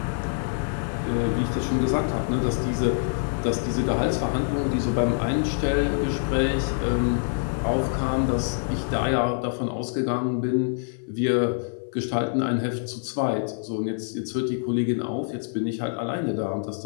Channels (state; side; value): silent; right; 60 dB below the other